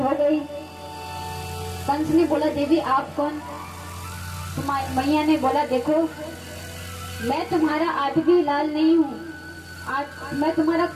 गई। कंस ने बोला देवी आप कौन? मैया ने बोला देखो मैं तुम्हारा आठवीं लाल नहीं हूँ, मैं तुम्हारा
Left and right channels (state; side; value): identical; both; correlation 1.00